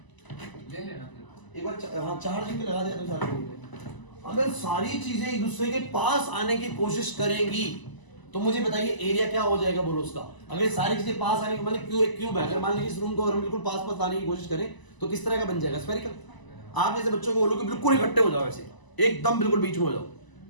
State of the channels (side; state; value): right; late; 1.0 ms